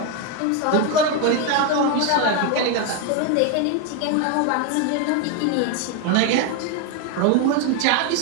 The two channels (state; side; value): different; both; correlation 0.01